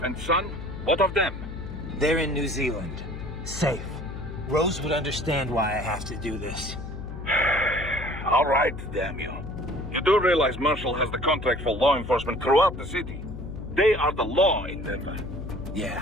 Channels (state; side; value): noise; left; hum, 9 dB below the sound